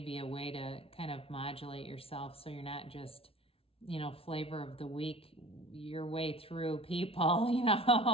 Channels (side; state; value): right; late; 0.27 ms